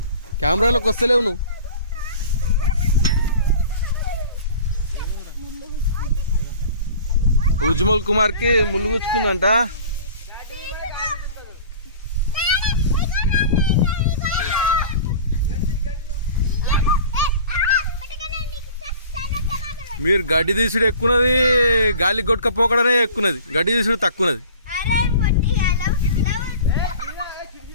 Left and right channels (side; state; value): both; inverted; correlation -0.43